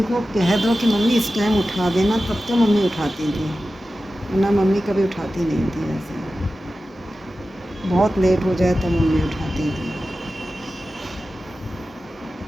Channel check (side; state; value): both; normal; correlation 0.94